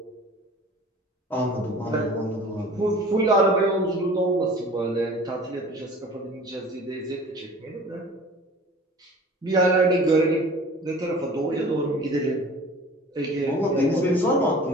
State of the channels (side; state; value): both; normal; correlation 0.44